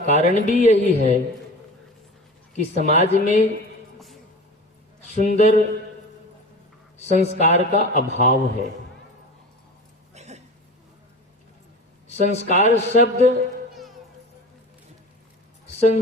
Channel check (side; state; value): both; normal; correlation 0.34